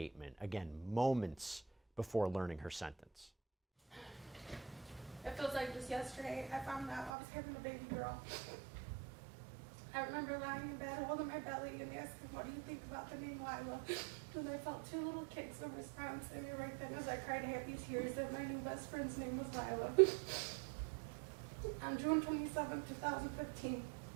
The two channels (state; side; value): drops out; left; at 7.1 s